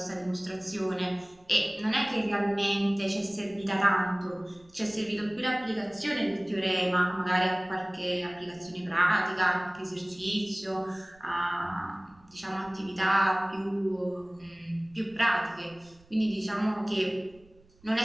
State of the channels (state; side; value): noise; right; rumble, 28 dB below the sound